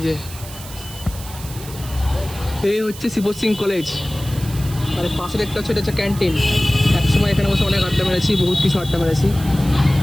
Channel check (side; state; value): right; noise; hiss, 15 dB below the sound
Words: যে এই হচ্ছে শিবশ্রী কলেজ, আর পাশে দেখতে হচ্ছে এটা হচ্ছে ক্যান্টিন। একসময় এখানে বসে অনেক আড্ডা মেরেছি, বহুত কিছু আড্ডা মেরেছি।